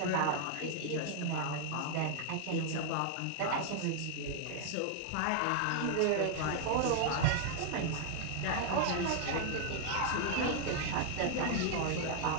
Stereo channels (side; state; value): both; different; correlation 0.00